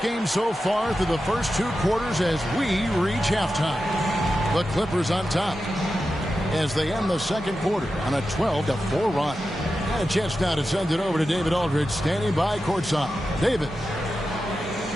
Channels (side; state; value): both; normal; correlation 0.91